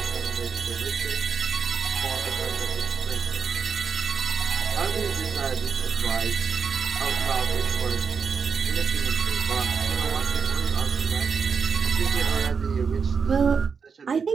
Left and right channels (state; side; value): quieter; left; 5.9 dB